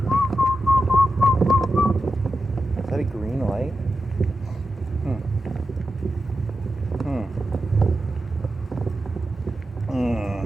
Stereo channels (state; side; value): normal; both; correlation 0.90